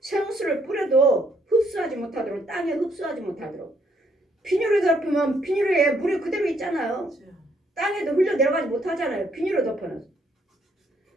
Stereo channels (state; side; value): normal; both; correlation 0.70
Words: 생수를 뿌려도 흡수하지 못하도록, 땅에 흡수하지 못하도록. 비닐을 덮으면 비닐에 물이 그대로 있잖아요. 땅에도 흘러 내려가지 못하잖아요. 비닐을 덮어놨어.